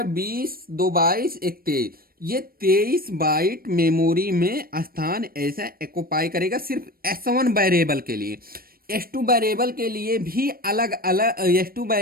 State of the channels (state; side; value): late; left; 0.43 ms